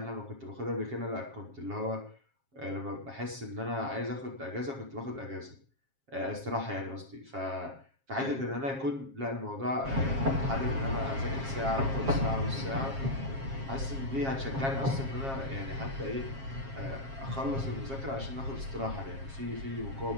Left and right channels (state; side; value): late; left; 7.4 ms